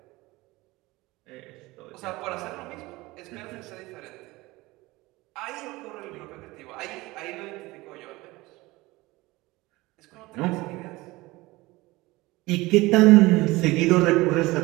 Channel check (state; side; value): quieter; left; 20.8 dB